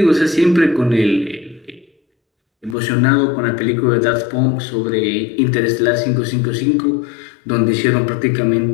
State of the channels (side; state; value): right; drops out; at 2.8 s